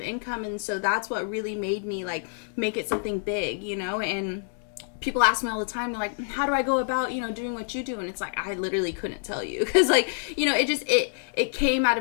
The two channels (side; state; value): right; silent; 60 dB below the other